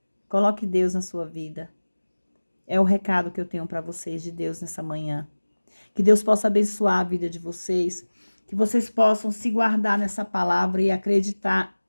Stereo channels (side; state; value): both; inverted; correlation -1.00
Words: Coloque Deus na sua vida. É o recado que eu tenho para vocês de Deus nessa manhã. Que Deus possa abençoar a vida de vocês. Que vocês possam se guardar nessa palavra e acreditar